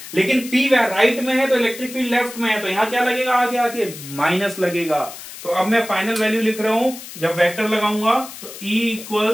लेकिन पी राइट में है तो इलेक्ट्रिक फील्ड लेफ्ट में है, तो यहां क्या लगेगा, आगे आके माइनस लगेगा, तो अब मैं फाइनल वैल्यू लिख रहा हूं, जब वेक्टर लगाऊंगा तो E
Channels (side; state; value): left; noise; hiss, 13 dB below the sound